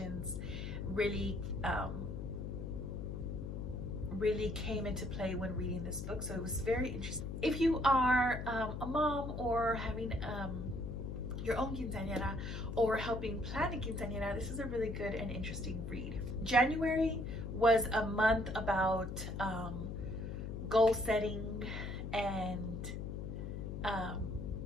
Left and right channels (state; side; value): noise; left; hum, 5 dB below the sound